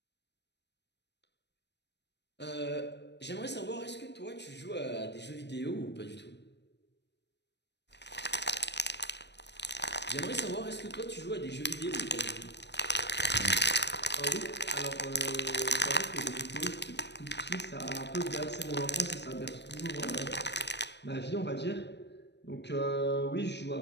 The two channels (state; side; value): late; right; 0.50 ms